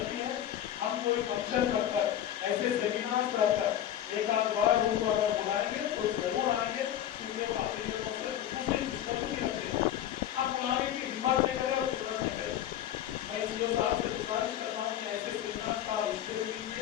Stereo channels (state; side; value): quieter; right; 11.1 dB